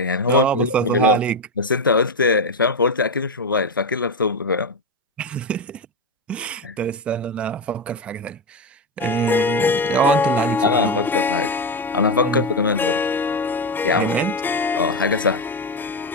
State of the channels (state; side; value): normal; both; correlation 0.11